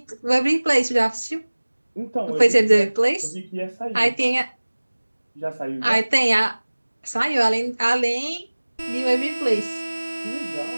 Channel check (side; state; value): both; inverted; correlation -1.00